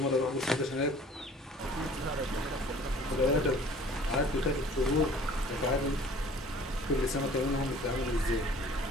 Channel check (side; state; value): both; normal; correlation 0.50